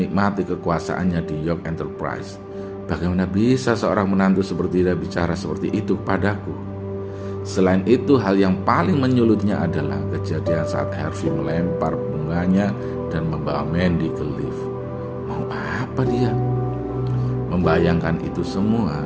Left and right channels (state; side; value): identical; both; correlation 1.00